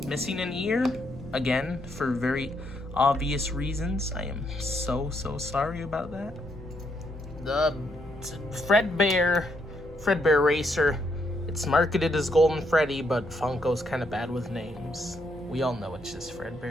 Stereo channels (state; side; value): normal; both; correlation 0.75